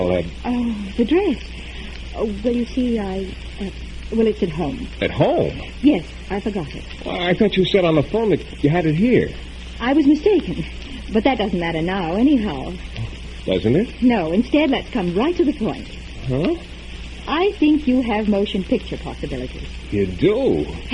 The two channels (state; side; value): identical; both; correlation 1.00